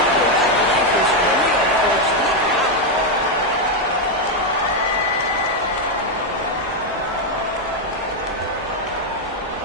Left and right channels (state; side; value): normal; both; correlation 0.03